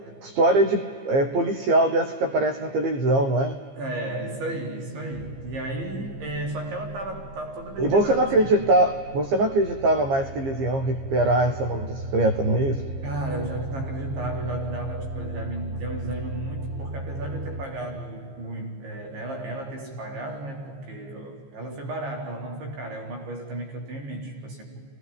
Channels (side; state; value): left; late; 15 ms